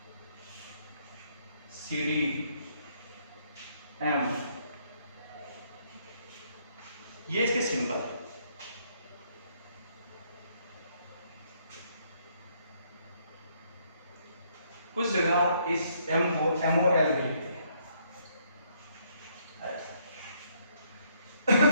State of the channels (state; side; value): inverted; both; correlation -0.70